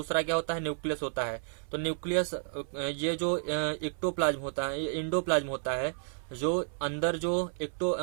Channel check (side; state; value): left; silent; 57 dB below the other